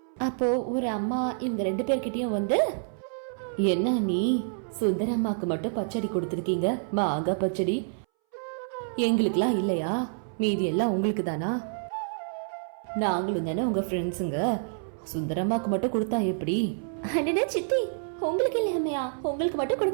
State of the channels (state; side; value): silent; left; 59 dB below the other